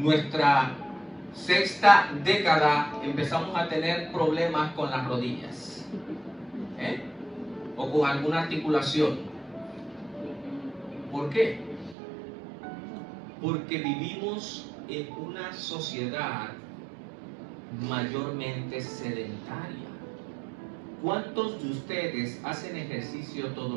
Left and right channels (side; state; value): left; drops out; at 12.0 s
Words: sexta década empezamos a tener problemas con las rodillas? O con alguna articulación. ¿Por qué? Porque vivimos en una sociedad mayormente sedentaria. ¿Cuántos de ustedes hacen ejercicio todos